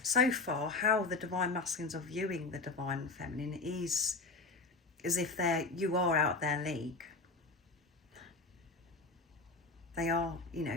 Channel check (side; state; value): right; quieter; 3.6 dB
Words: far, how the divine masculines are viewing the divine feminine is as if you are out their league. They are,